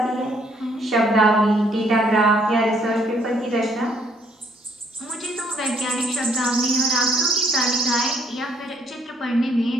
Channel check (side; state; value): both; normal; correlation 0.65